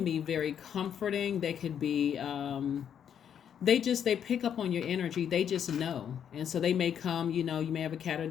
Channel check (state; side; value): quieter; right; 8.7 dB